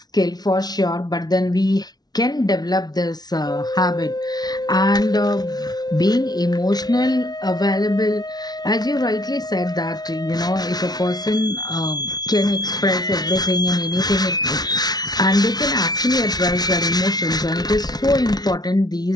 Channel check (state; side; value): late; right; 0.19 ms